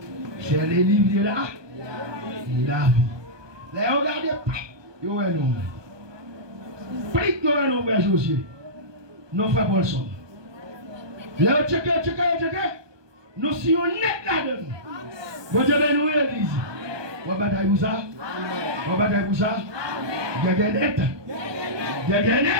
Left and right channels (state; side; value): late; left; 1.2 ms